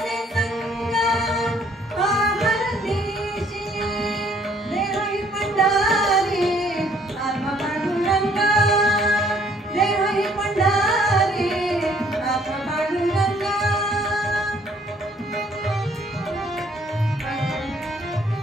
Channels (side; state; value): both; normal; correlation 0.62